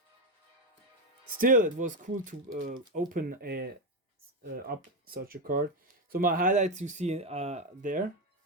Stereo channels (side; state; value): both; normal; correlation 0.09